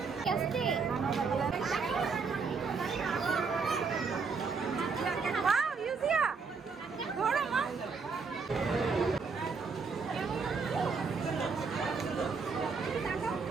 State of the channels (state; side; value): quieter; left; 5.0 dB